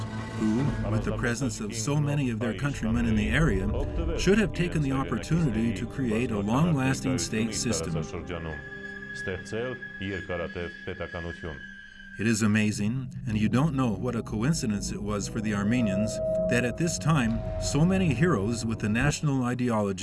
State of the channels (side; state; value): both; identical; correlation 1.00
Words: who, with the presence of so many of their countrymen in the area, should have taken the opportunity to create a long-lasting state system. It is amazing, and you don't know what a coincidence it was for the Armenians, that at this time, so many heroes with the national